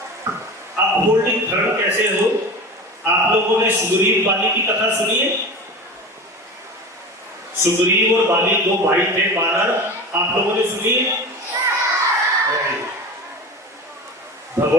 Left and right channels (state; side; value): normal; both; correlation 0.31